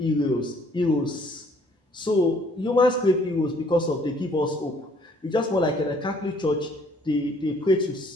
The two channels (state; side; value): normal; both; correlation 0.61